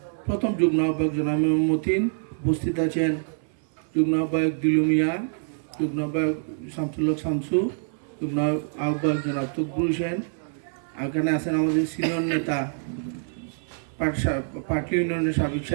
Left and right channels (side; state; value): left; silent; 61 dB below the other